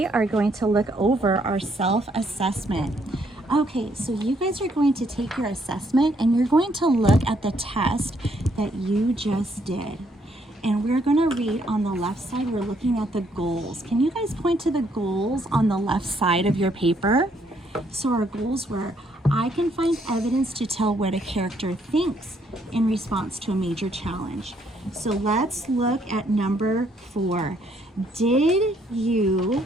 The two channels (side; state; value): both; normal; correlation 0.70